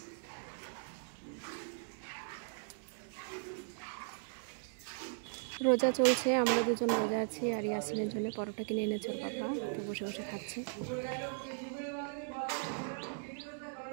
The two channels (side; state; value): left; silent; digital silence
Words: রোজা চলছে, আমরা দুজন রোজা আছি। আর ইয়াসিনের জন্য পরোটা কিনে এনেছে ওর পাপা, তো বসে বসে খাচ্ছে।